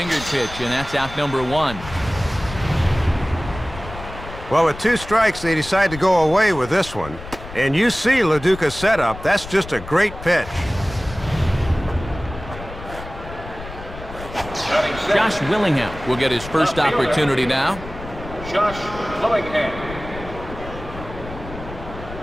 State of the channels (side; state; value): left; noise; rumble, 13 dB below the sound